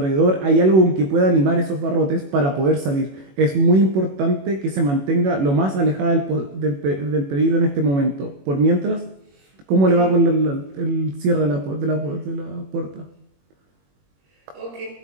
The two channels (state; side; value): late; left; 21 ms